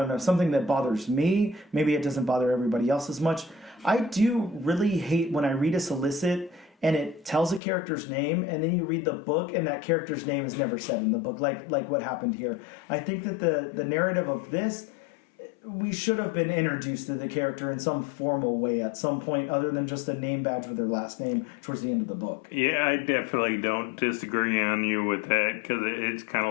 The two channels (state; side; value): drops out; right; at 7.6 s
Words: know, something that bothers me. Maybe it doesn't bother everybody else as much. I do really hate when I read a solicit and it tells a character's name, and then you read the book and that character's name is never said in the book, like what happened here. I think that the narrative of this, we should have been introduced to the character in some formal way at some point other than just a name badge with their last name towards the end of the book. Yeah, I definitely don't disagree on you with that, because it's kind